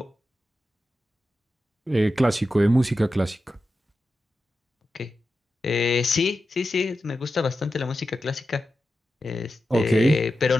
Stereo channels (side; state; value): both; normal; correlation 0.91